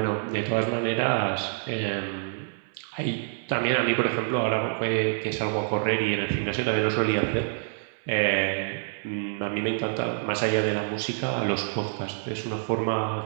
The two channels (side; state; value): left; silent; 60 dB below the other